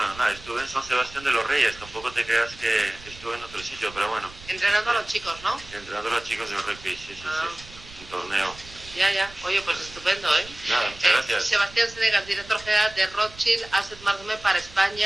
nada, estuve en San Sebastián de los Reyes, tampoco te creas que estuve en otro sitio, pero bueno. Entrenando a los chicos, ¿no? Entrenando a los chicos del rugby, sí, un torneo. Ya. Oye, pues estupendo, ¿eh? Nada, muchas gracias. Sebastián Senegas, director general de Rothschild Asset Management para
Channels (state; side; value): noise; right; rumble, 19 dB below the sound